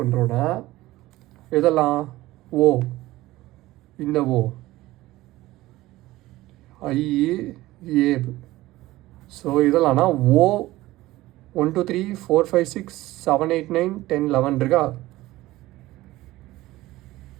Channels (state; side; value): quieter; left; 17.4 dB